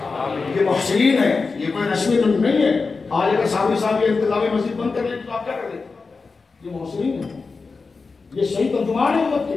یہ محسنین ہے، یہ کوئی رسمی نہیں ہے۔ آج اگر صحابی صاحب یہ انتظامی مسجد بند کر لیں تو آپ کیا کر لیں؟ یہ محسنین ہے، یہ صحیح ترجمان ہے امت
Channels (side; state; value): right; quieter; 4.3 dB